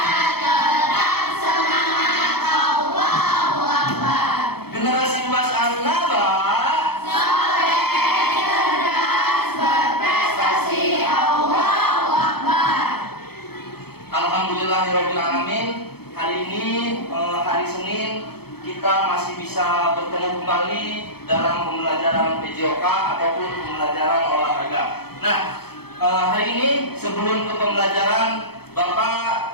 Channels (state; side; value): late; right; 0.96 ms